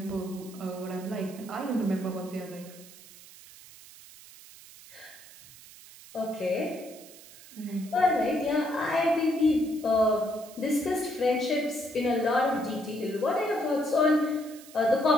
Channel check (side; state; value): right; noise; hiss, 19 dB below the sound